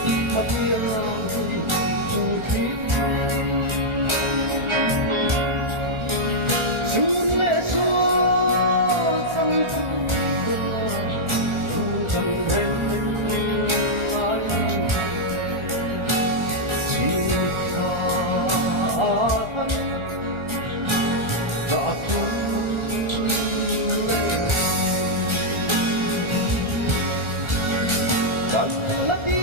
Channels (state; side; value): late; left; 1.4 ms